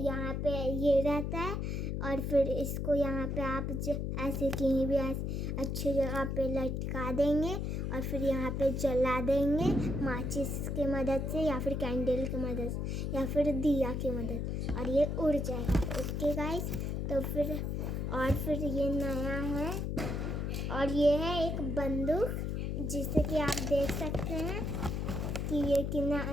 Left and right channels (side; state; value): left; noise; hum, 1 dB below the sound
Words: पे ये रहता है और फिर इसको यहाँ पे आप ऐसे कहीं भी ऐसे अच्छी जगह पे लटका देंगे और फिर यहाँ पे जला देंगे माचिस की मदद से या फिर कैंडल की मदद से या फिर दिया की मदद, और ये उड़ जाएगा। ओके गाइस, तो फिर ये नया है और ये है एक बंदूक, जिसे कि आप देख सकते हैं कि ये कितना